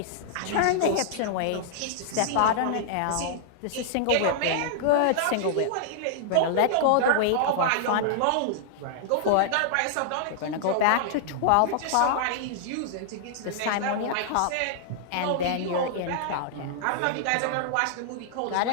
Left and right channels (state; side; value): different; both; correlation -0.01